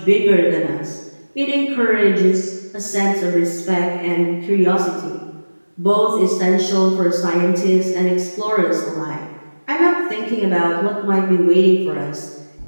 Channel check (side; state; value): both; inverted; correlation -1.00